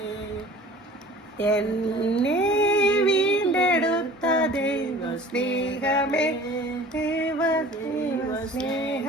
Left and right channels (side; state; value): both; normal; correlation 0.45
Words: എന്നെ വീണ്ടെടുത്ത ദൈവസ്നേഹമേ